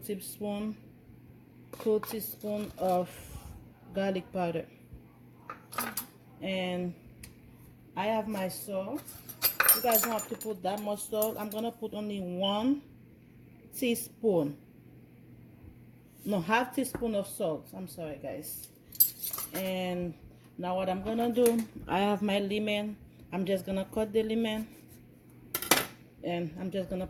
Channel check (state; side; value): identical; both; correlation 1.00